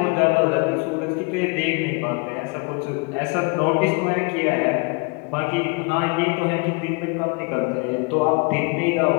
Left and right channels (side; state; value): right; quieter; 30.9 dB